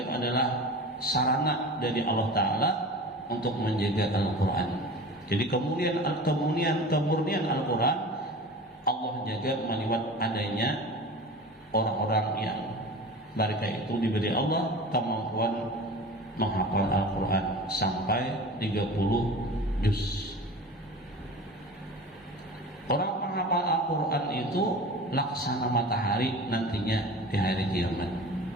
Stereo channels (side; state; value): both; normal; correlation 0.36